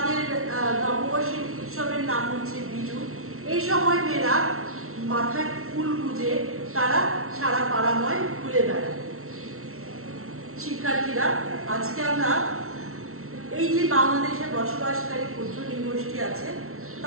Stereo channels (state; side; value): late; left; 0.63 ms